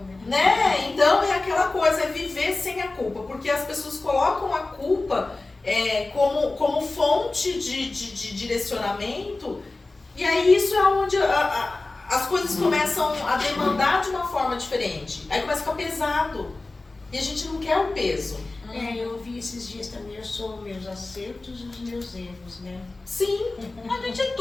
né? Então é aquela coisa, é viver sem a culpa. Porque as pessoas colocam a culpa como fonte de direcionamento. E aí isso é onde as coisas começam a demandar de uma forma diferente. Aí começa a ficar pesado. E a gente não quer o peso. Eu vi esses dias também, eu sou meus acertos e os meus erros, né? Sim. A gente é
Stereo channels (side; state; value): right; quieter; 3.2 dB